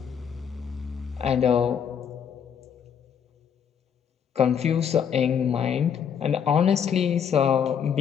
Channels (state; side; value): quieter; right; 7.8 dB